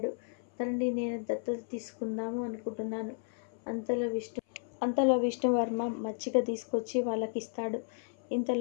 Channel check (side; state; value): right; silent; 56 dB below the other